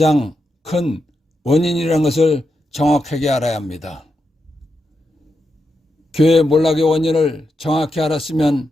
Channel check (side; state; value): both; normal; correlation 0.86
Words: 큰 원인이라는 것을 정확하게 알아야 합니다. 교회 몰락의 원인을 정확히 알았으면